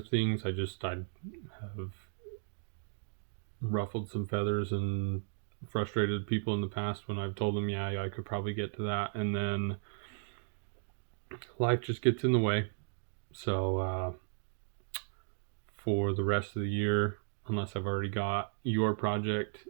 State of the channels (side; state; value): left; silent; digital silence